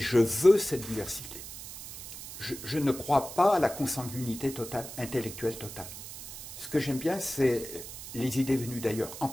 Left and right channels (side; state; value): right; noise; hiss, 11 dB below the sound